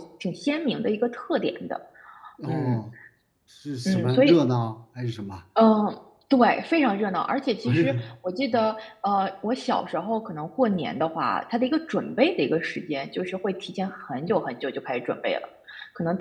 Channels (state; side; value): identical; both; correlation 1.00